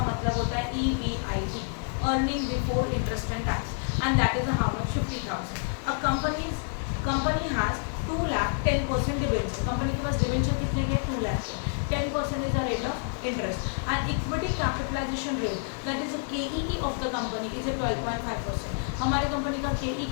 मतलब होता है EBIT, earning before interest and tax, and that is how much, 50,000. A company has 2 lakh 10% debenture, company के पास डिबेंचर कितने के, 2 लाख के, 10% is the rate of interest, and equity capitalization rate, that is the KEE of the company is a 12.5%. हमारे कंपनी का KE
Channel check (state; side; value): silent; right; 59 dB below the other